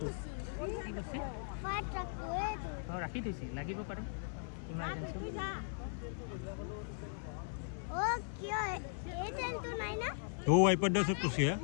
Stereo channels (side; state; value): right; silent; 52 dB below the other